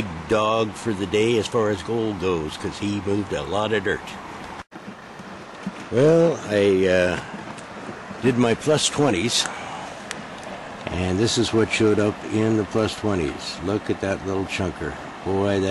dog for the day as far as gold goes, because he moved a lot of dirt. Well, I did my plus 20s. And this is what showed up in the plus 20s. Look at that little chunker. Boy,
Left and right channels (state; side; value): identical; both; correlation 1.00